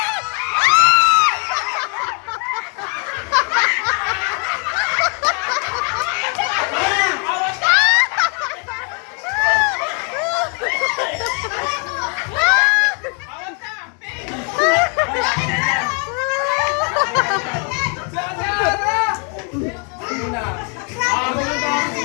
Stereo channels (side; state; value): right; quieter; 37.9 dB